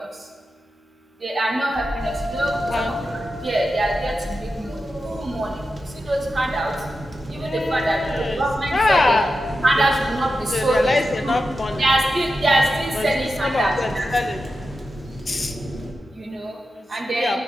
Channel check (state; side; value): normal; both; correlation 0.90